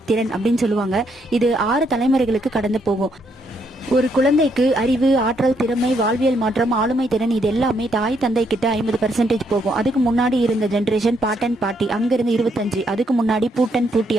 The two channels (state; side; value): normal; both; correlation 0.74